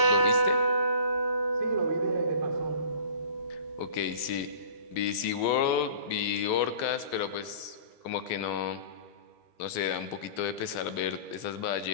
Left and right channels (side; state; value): right; late; 13 ms